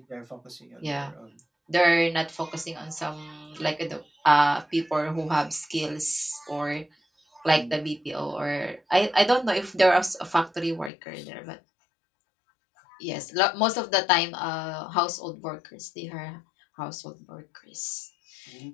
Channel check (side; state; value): right; drops out; at 10.9 s